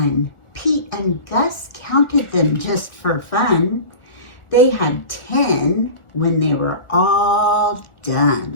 Pete and Gus counted them just for fun. They had 10 when they were all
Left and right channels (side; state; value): right; late; 1.4 ms